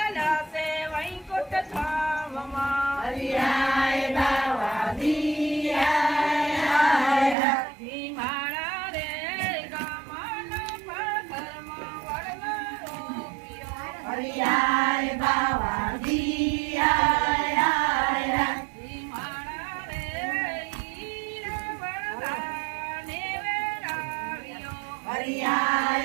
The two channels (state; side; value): drops out; left; at 7.4 s